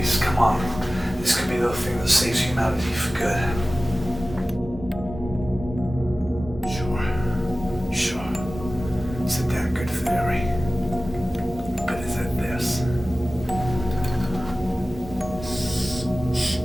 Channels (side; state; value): both; normal; correlation 0.96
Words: come on. This could be the thing that saves humanity for good. Sure. It's a damn good theory. But is it this?